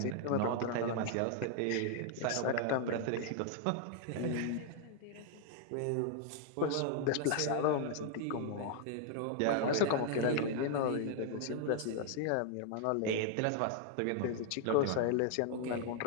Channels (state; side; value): different; both; correlation 0.00